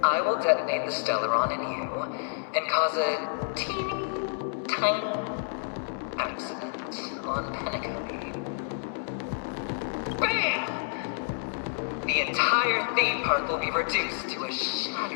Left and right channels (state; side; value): silent; right; 59 dB below the other